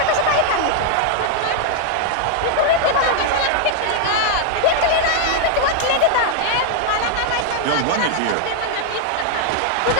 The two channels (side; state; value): both; different; correlation 0.00